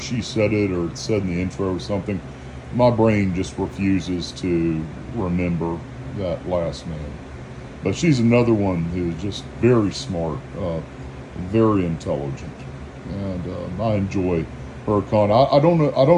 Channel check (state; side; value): identical; both; correlation 1.00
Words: said it, or it's said in the intro or something. My brain just refuses to remember that last name. But she's another one who's just very smart, very intelligent, and I enjoy her content. I